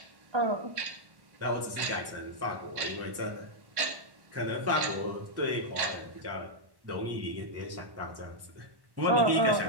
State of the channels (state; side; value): late; left; 1.1 ms